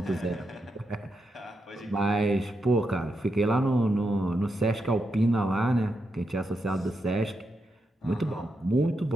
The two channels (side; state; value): both; normal; correlation 0.84